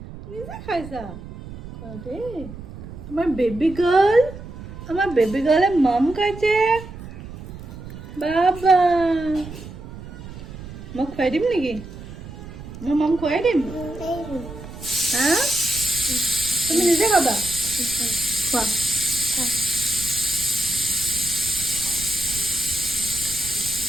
খাইছা খোৱা দেই আমাৰ বেবী গাৰ্লে মাম খাইছে বাবা মই খুৱাই দিম নেকি মই মাম খুৱাই দিম হা তুমি নিজে খাবা খোৱা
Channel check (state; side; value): noise; right; rumble, 13 dB below the sound